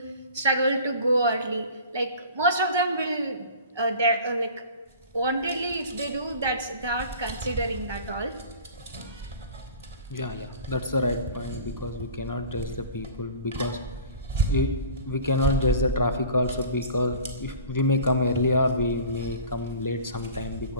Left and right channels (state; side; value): inverted; both; correlation -0.42